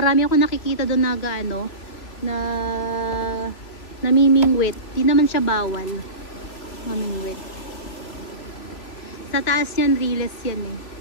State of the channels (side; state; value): right; late; 3.2 ms